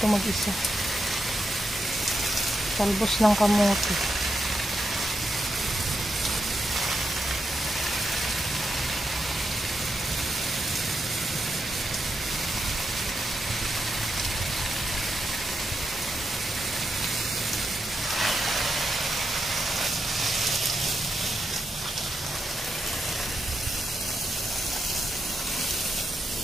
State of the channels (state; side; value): normal; both; correlation 0.84